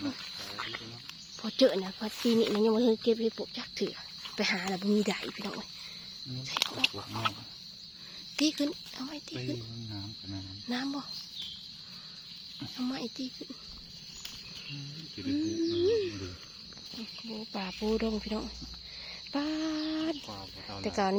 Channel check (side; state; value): both; identical; correlation 1.00